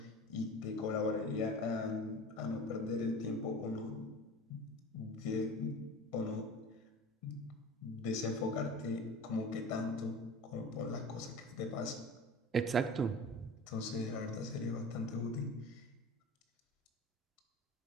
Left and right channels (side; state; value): both; normal; correlation 0.37